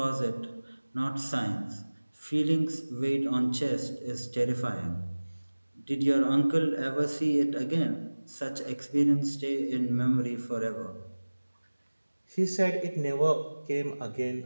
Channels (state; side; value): inverted; both; correlation -1.00